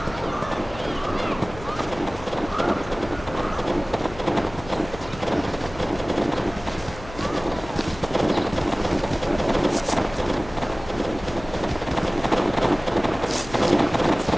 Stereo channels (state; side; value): noise; left; hum, 15 dB below the sound